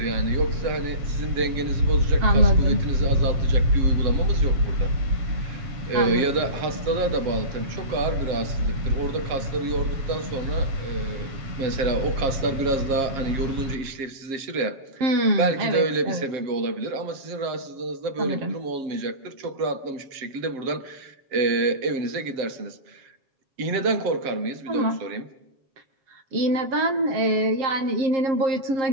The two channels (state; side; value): late; left; 7.4 ms